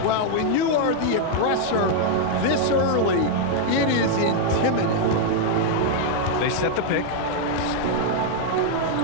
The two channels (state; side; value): different; both; correlation 0.00